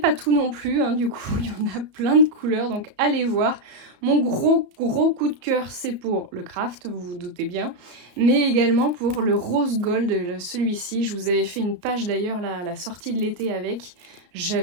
tout non plus, hein, du coup, il y en a plein de couleurs, donc allez voir. Mon gros coup de cœur, c'est pour le craft, vous vous doutez bien, mais également pour le rose gold, celui-ci. Je vous avais fait une page d'ailleurs à la sortie de l'été avec.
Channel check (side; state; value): left; late; 34 ms